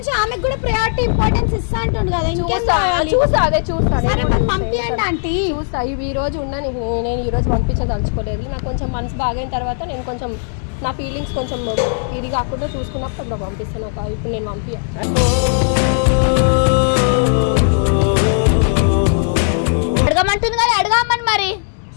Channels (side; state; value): right; silent; digital silence